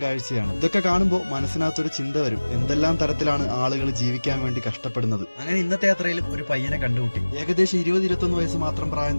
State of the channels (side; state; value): both; inverted; correlation -1.00